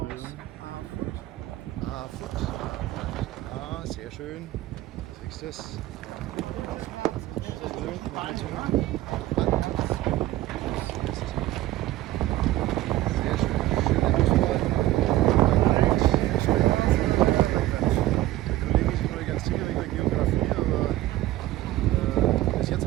aus Foot. Ah, sehr schön. Siehst du das? Sehr schön. Schöne Auswahl. Der Kollege ist noch nicht ganz sicher wegen der Geografie, aber bis jetzt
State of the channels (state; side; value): quieter; left; 15.6 dB